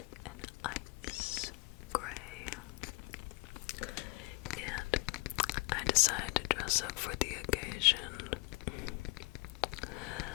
an ice gray. And I decided to dress up for the occasion.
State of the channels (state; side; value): quieter; right; 25.7 dB